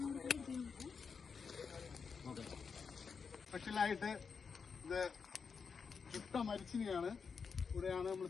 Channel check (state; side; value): quieter; right; 5.7 dB